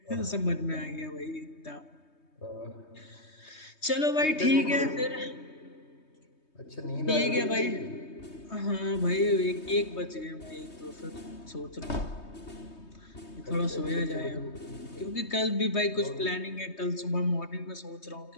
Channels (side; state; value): right; late; 3.2 ms